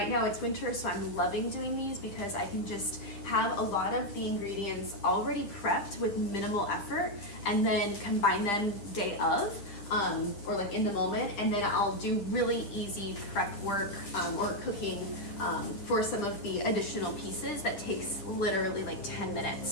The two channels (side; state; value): right; late; 10 ms